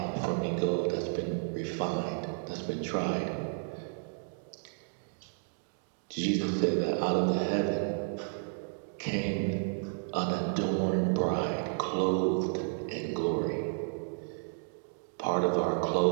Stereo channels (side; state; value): left; silent; digital silence